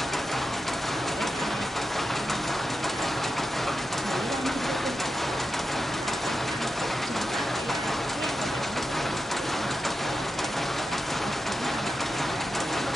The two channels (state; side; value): normal; both; correlation 0.90